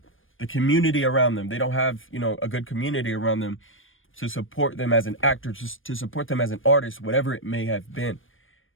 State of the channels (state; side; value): late; right; 0.59 ms